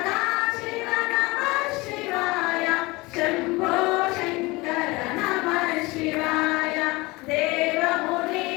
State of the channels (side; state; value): right; quieter; 23.0 dB